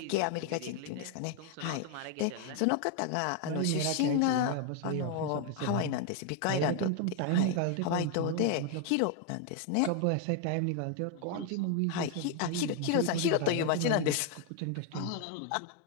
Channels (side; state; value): both; different; correlation 0.00